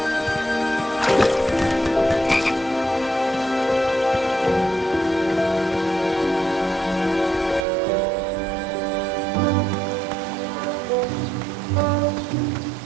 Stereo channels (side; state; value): left; drops out; at 7.7 s